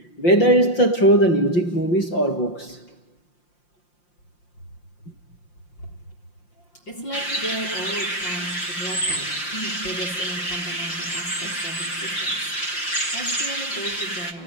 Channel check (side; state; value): right; late; 5.7 ms